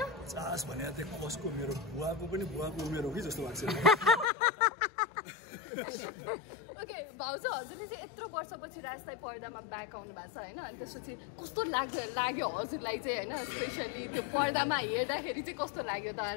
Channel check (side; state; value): right; drops out; at 4.3 s